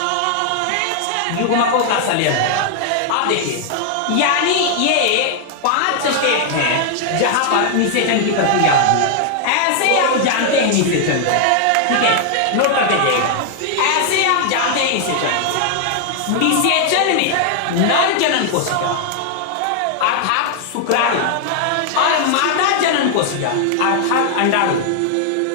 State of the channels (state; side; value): different; both; correlation 0.00